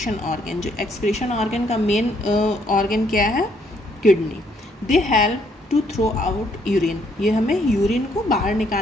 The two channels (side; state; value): both; normal; correlation 0.69